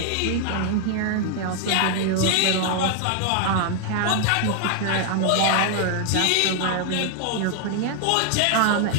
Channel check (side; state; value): both; different; correlation 0.00